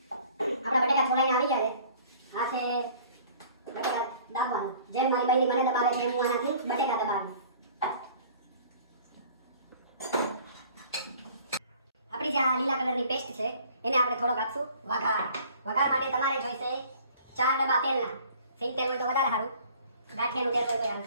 આપણા બટેકા છોડાઈને આવી ગયા છે. આ છે બટેકા દાબવાનું. જેમ મારી બૈરી મને દબાવે છે એમ હું આનાથી બટેકા દબાવું. આપણી જે આ લીલા કલરની પેસ્ટ છે એને આપણે થોડોક આપશું વઘાર. વઘાર માટે તમારે જોઈશે 4 ડબ્બા તેલના. સિંગ તેલ હોય તો વધારે સારું, ગાંઠિયાનું તેલ હોય તો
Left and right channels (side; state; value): both; inverted; correlation -0.52